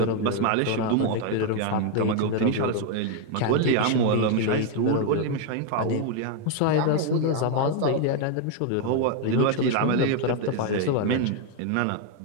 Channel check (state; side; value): different; both; correlation 0.01